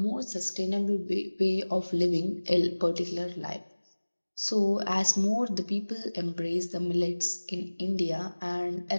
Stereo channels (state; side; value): inverted; both; correlation -1.00